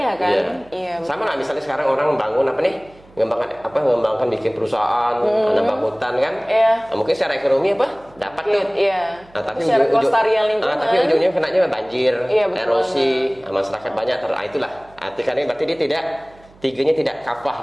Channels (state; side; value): noise; right; hum, 26 dB below the sound